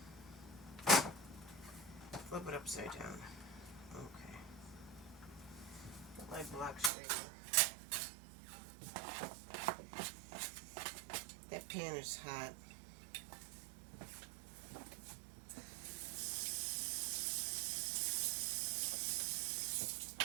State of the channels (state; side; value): drops out; left; at 6.9 s